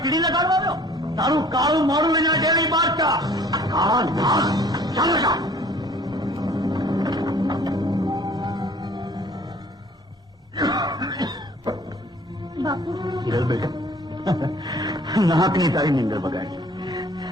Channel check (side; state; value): both; normal; correlation 0.53